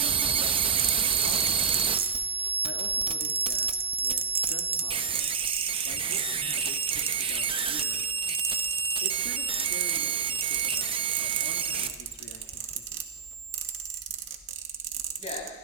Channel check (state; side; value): quieter; left; 6.1 dB